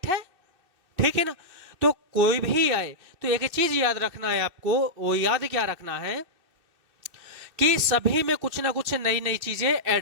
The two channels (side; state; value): left; late; 2.7 ms